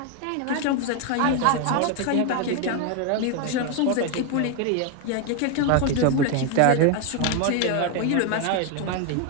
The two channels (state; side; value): different; both; correlation 0.01